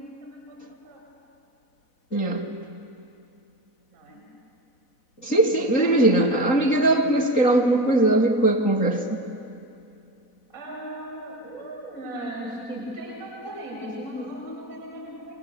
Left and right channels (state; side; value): late; right; 4.0 ms